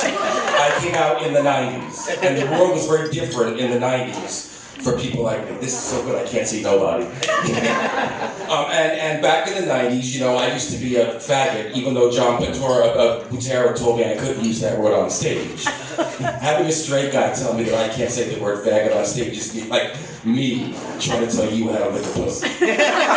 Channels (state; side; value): identical; both; correlation 1.00